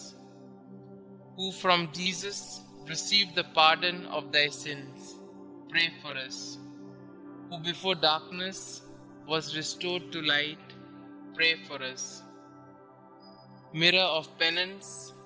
Who from Jesus received the pardon of thy sins, pray for us. Who before darkness was restored to light, pray for us. Mirror of penance,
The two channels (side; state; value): both; identical; correlation 1.00